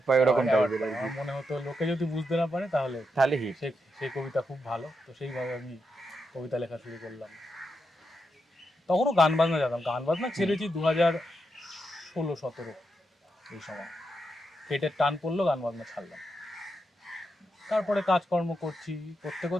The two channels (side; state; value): both; normal; correlation 0.84